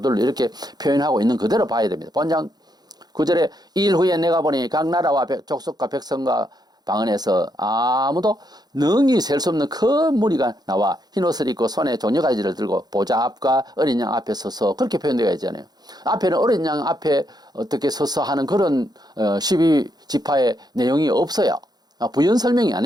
이렇게 표현하고 있는 그대로 봐야 됩니다. 본장 9절에 2일 후에 내가 보니 각 나라와 족속과 백성과 방언에서 아무도 능히 셀 수 없는 큰 무리가 나와 흰옷을 입고 손에 종려가지를 들고 보좌 앞과 어린 양 앞에 서서 그렇게 표현되어 있잖아요. 앞에는 어린 양 앞에 어떻게 서서 하는 그런 12지파의 내용이 없어요. 부연 설명이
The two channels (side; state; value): left; late; 0.19 ms